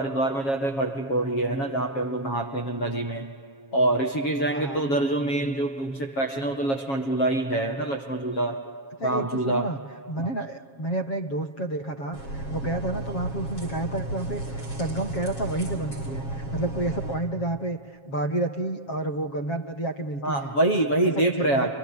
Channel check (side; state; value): right; late; 7.3 ms